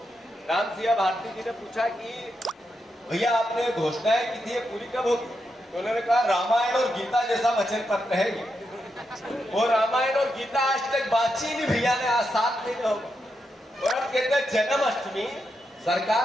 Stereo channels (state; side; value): normal; both; correlation 0.84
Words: राम सिंह भारती जी ने पूछा कि भैया आपने घोषणाएं की थी, ये पूरी कब होगी? तो उन्होंने कहा रामायण और गीता जैसा वचन पत्र है ये। वो रामायण और गीता आज तक बातचीत नहीं भैया ने, आज 7 महीने हो गए, और अब कहते हैं जन्माष्टमी